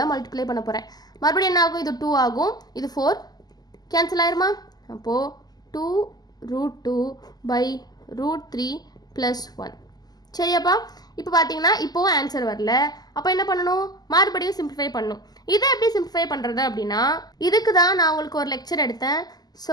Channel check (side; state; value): right; late; 0.19 ms